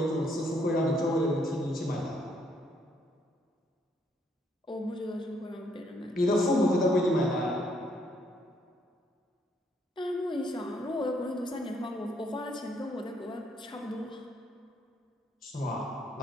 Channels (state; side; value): normal; both; correlation 0.70